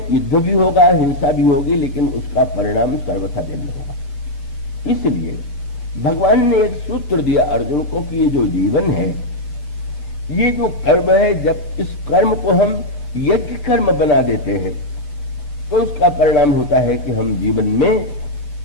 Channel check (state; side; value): late; right; 8.1 ms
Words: युद्ध भी होगा, हिंसा भी होगी, लेकिन उसका परिणाम सर्वथा भिन्न होगा। इसलिए भगवान ने एक सूत्र दिया अर्जुन को कि ये जो जीवन है, ये जो कर्म है, जब इस कर्म को हम यज्ञ कर्म बना देते हैं तो उसका परिणाम होता है कि हम जीवन में